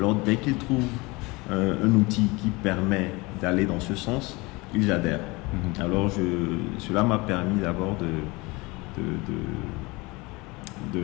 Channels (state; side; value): quieter; right; 24.5 dB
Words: dès qu'ils trouvent un outil qui permet d'aller dans ce sens, ils adhèrent. Alors, cela m'a permis d'abord